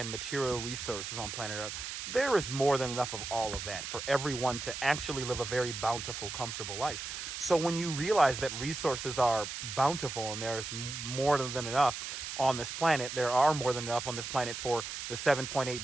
material resources on planet Earth, there is more than enough of all of that for everyone to actually live a very bountiful, comfortable life. So when you realize that resources are bountiful and there's more than enough on this planet, there are more than enough on this planet for the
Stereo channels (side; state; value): right; noise; hiss, 6 dB below the sound